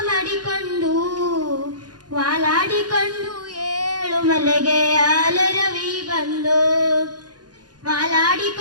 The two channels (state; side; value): late; left; 0.69 ms